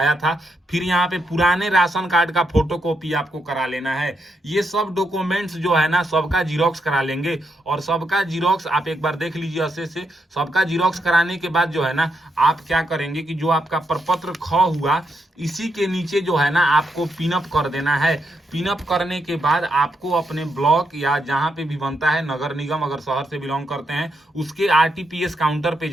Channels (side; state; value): both; normal; correlation 0.81